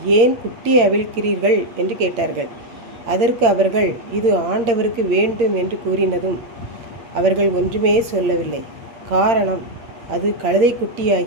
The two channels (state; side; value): late; left; 8.7 ms